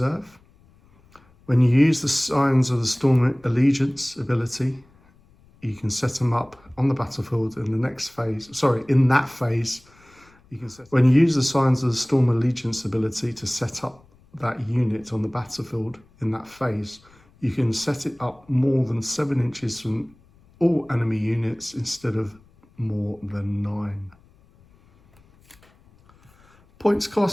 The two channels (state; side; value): noise; left; rumble, 30 dB below the sound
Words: When you use the Signs of the Storm Allegiance ability, you can set them up on the battlefield in the next phase. In that phase, you can set. When you use the Signs of the Storm Allegiance ability to set up that unit on the battlefield in that phase, you can set it up more than 7 inches from all enemy units instead of more than 9. Points